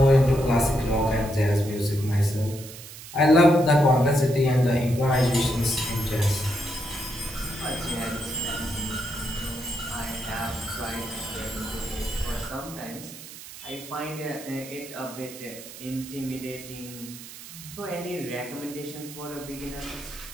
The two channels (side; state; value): right; noise; hiss, 14 dB below the sound